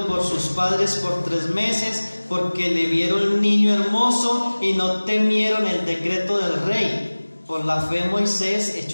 por sus padres por 3 meses, porque le vieron niño hermoso y no temieron el decreto del rey. Por la fe Moisés,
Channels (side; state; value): both; inverted; correlation -1.00